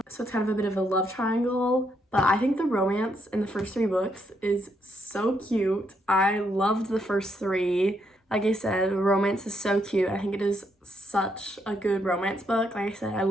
So it's kind of a bit of a love triangle. But I think the romance in the first three books is so cute. I loved the first three. Like I said, the romance is so cute. I think it is such a good romance book. Like I said, I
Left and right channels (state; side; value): normal; both; correlation 0.76